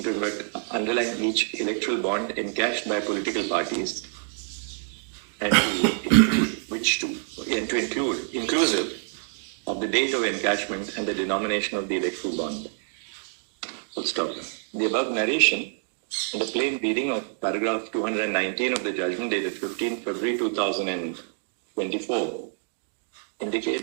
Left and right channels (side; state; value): left; silent; digital silence